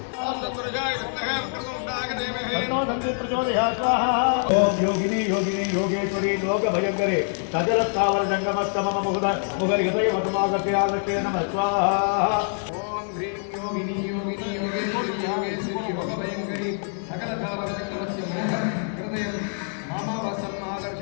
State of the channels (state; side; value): silent; right; 62 dB below the other